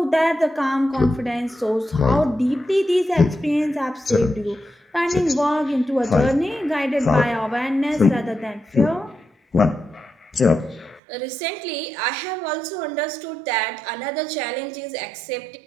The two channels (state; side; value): drops out; left; at 11.0 s